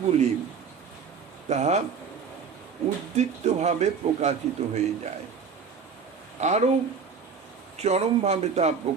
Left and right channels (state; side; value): quieter; left; 5.9 dB